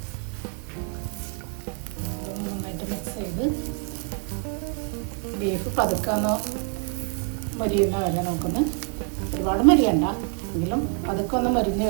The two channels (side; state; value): left; quieter; 39.9 dB